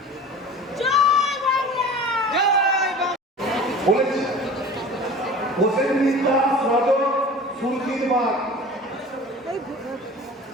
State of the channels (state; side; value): normal; both; correlation 0.39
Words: বলেছি হোসেন মিত্রা সদর সুরকির বাগ,